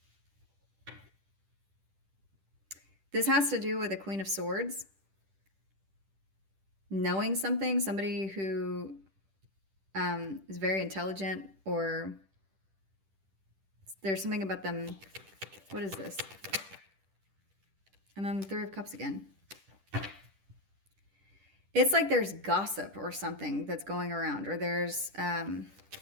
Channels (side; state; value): left; late; 10 ms